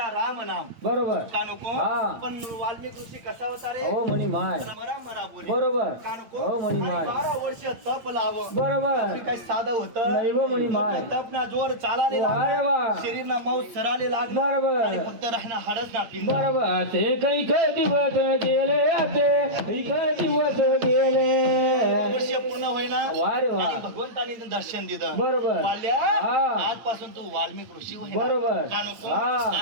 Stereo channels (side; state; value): left; late; 8.8 ms